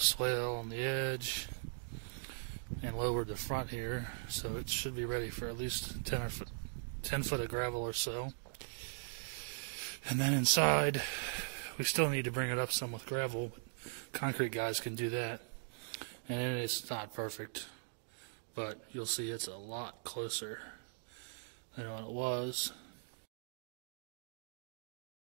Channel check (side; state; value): left; silent; digital silence